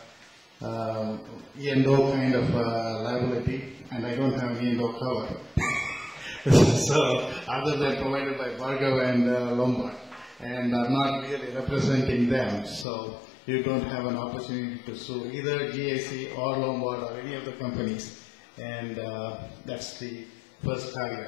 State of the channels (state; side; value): drops out; right; at 12.9 s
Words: E&O kind of liability, and I don't have an E&O cover. So, other than provided by Bhargav and Lombard, and I'm not really representing them, so you don't have an opportunity to sue either GIC or Lombard or any of the companies, and that's the first